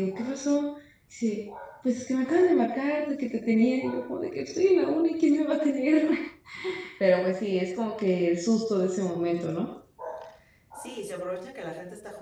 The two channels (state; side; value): identical; both; correlation 1.00